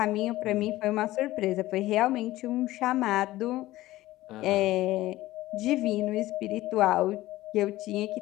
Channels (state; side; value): quieter; right; 16.7 dB